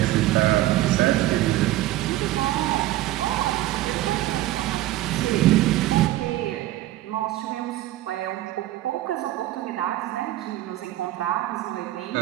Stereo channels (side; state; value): left; quieter; 15.6 dB